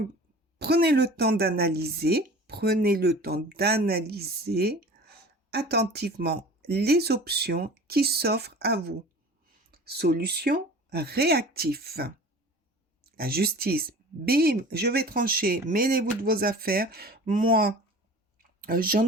prenez le temps d'analyser, attentivement les options qui s'offrent à vous. Solution, réactif. La justice, bim, je vais trancher, mêlez-vous de vos affaires. Moi,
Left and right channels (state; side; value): normal; both; correlation 0.41